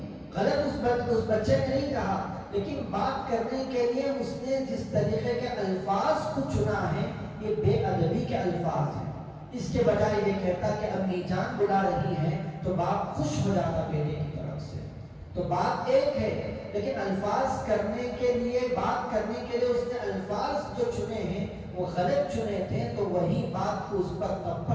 غلط اس بچے نے نہیں کہا، لیکن بات کرنے کے لیے اس نے جس طریقے کے الفاظ کو چنا ہے یہ بے ادبی کے الفاظ ہیں۔ اس کے بجائے یہ کہتا کہ امی جان بلا رہی ہے تو باپ خوش ہو جاتا بیٹے کی طرف سے۔ تو بات ایک ہے، لیکن الفاظ کرنے کے لیے، بات کرنے کے لیے اس نے الفاظ جو چنے ہیں وہ غلط چنے تھے، تو وہی بات کو اس پر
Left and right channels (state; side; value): identical; both; correlation 1.00